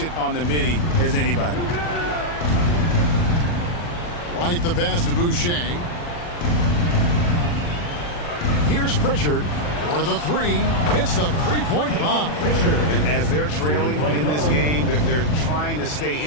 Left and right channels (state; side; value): late; right; 40 ms